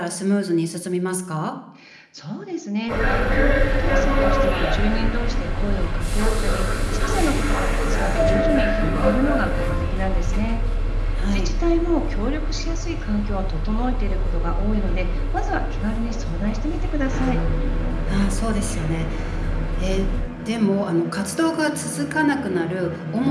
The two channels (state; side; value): identical; both; correlation 1.00